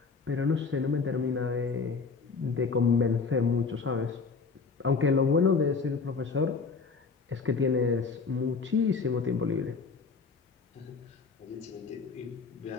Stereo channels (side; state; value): right; quieter; 4.9 dB